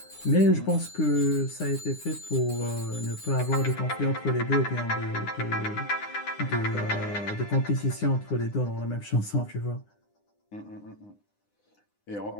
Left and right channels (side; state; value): right; late; 9.8 ms